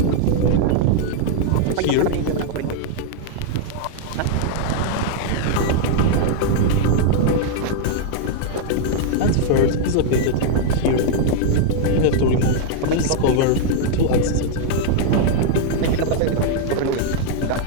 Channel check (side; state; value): both; different; correlation -0.01